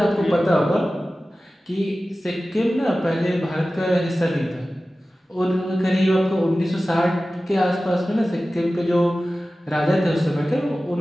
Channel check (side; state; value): both; normal; correlation 0.96